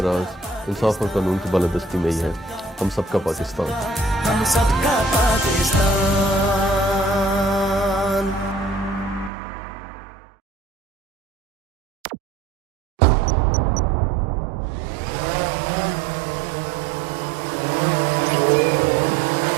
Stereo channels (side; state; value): left; drops out; at 9.3 s